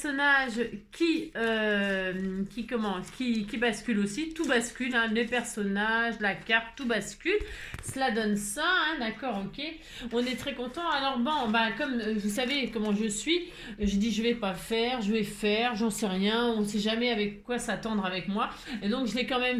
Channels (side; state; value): both; identical; correlation 1.00